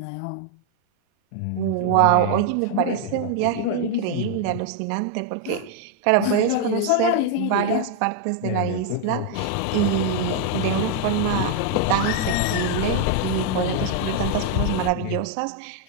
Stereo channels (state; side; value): different; both; correlation 0.00